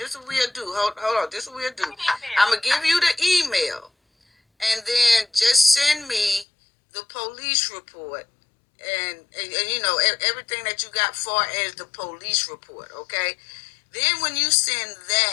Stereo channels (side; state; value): right; drops out; at 6.5 s